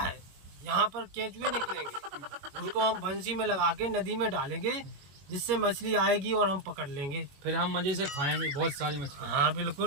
यहाँ पर केंचुए निकलेंगे, उनको हम बंसी में लगा के नदी में डालेंगे, जिससे मछली आएगी और हम पकड़ लेंगे। फिर हम मजे से खाएंगे बहुत सारी मछली। हाँ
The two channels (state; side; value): late; left; 21 ms